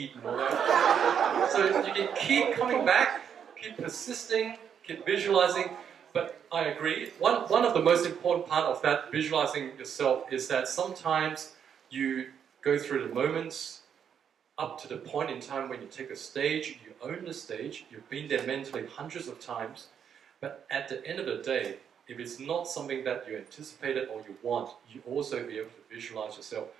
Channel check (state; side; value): quieter; left; 8.0 dB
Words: and all that. So you can keep coming back, keep persisting, keep visualizing. But I agree. One of the most important part of that visualizing yourself is that sometimes you go through the moments up to the point in time when you take a stage, you own the stage, you've been there mentally hundreds of times, but at the end of the day, if it's not something that you anticipated or you want, you also be able to visualize yourself